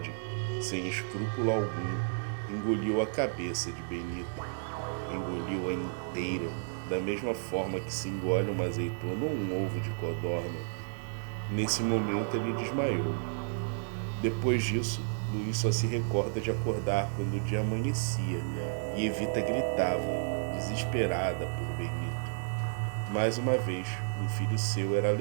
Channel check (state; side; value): silent; left; digital silence